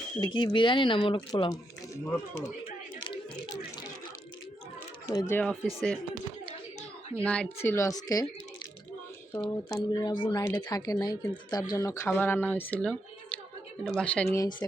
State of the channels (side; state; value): both; normal; correlation 0.82